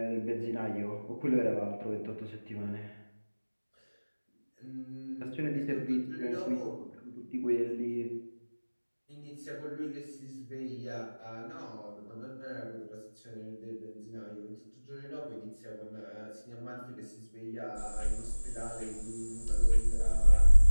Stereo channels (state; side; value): inverted; both; correlation -1.00